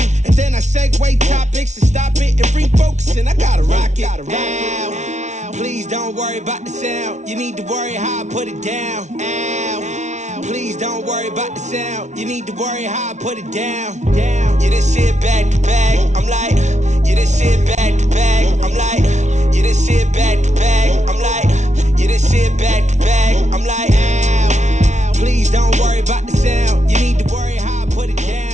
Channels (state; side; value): late; left; 0.33 ms